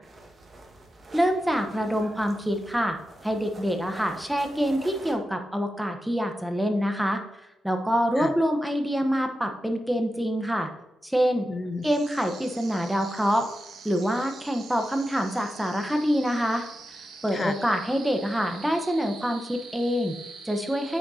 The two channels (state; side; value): normal; both; correlation 0.91